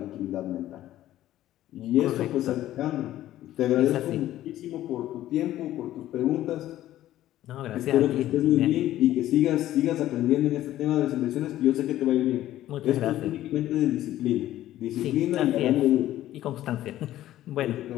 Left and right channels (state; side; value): quieter; right; 13.7 dB